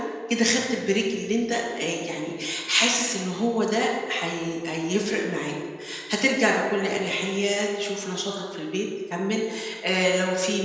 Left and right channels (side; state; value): both; identical; correlation 1.00